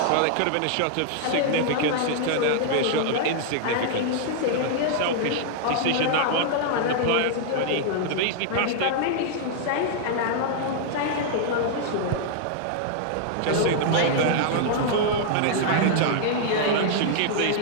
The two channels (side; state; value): both; different; correlation -0.01